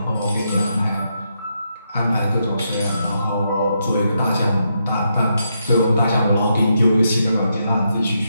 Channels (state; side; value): inverted; both; correlation -0.81